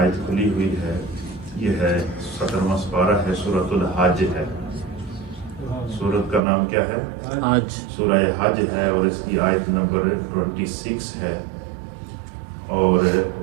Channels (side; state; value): left; drops out; at 6.4 s